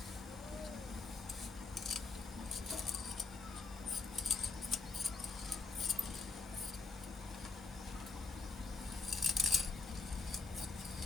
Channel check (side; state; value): right; quieter; 4.1 dB